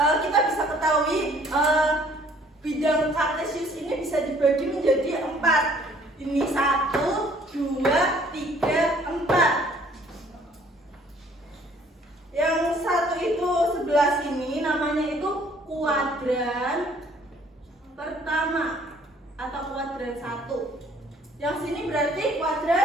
bisa ketahui bidang Kartesius ini bisa dibagi menjadi 4. Ini 1, 2, 3, 4. Yang satu itu sebelah sini namanya itu kuadran pertama atau kuadran 1. Yang sini berarti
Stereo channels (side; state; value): both; normal; correlation 0.59